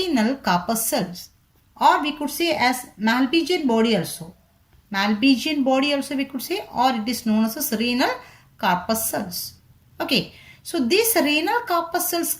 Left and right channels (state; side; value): identical; both; correlation 1.00